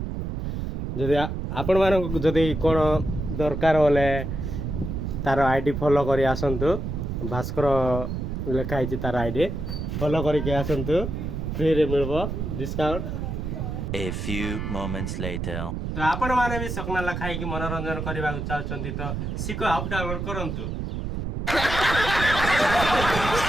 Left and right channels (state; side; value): noise; right; rumble, 4 dB below the sound